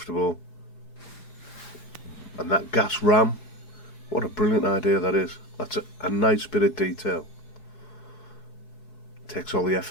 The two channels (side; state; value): right; late; 4.7 ms